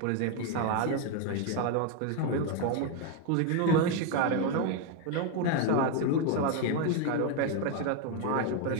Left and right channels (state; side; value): different; both; correlation 0.02